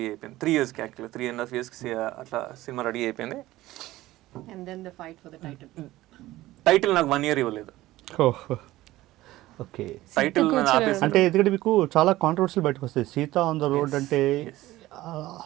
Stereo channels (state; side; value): quieter; left; 16.8 dB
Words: అయిపోయింది. 3 yearsకి యాక్చువల్లీ 3.5 yearsకి అట్లా సినిమా రెడీ అయిపోయింది. And then the fight for the title. Title నాకు 1 year ఇవ్వలేదు. ఓకే. టైటిల్ ఆపేసి అంటే ఎందుకంటే మీకు చాలా కాంట్రవర్సీలు బయటకు వస్తాయి. సీత ఆన్ ద రోడ్ అంటే